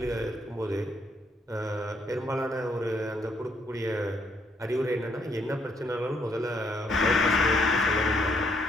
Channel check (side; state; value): both; normal; correlation 0.71